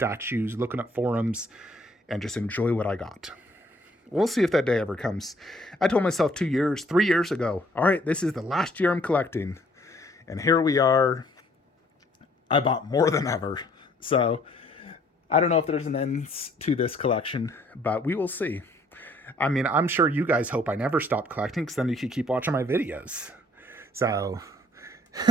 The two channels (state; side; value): normal; both; correlation 0.62